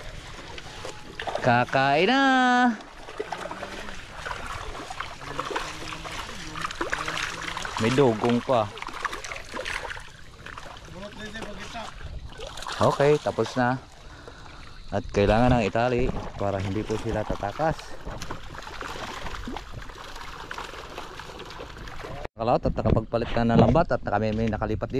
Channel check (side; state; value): both; identical; correlation 1.00